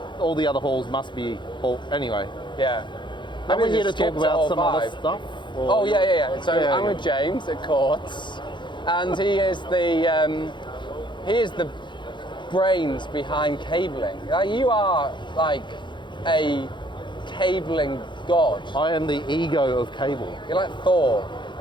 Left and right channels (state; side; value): late; right; 0.23 ms